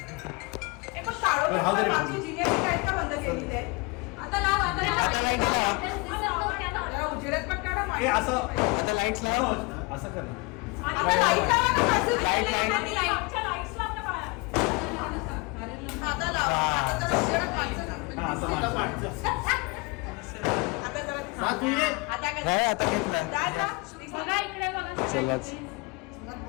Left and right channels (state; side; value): quieter; right; 28.0 dB